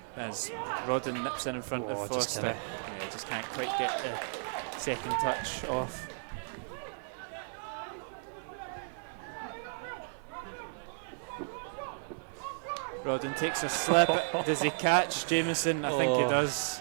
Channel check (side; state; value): left; silent; digital silence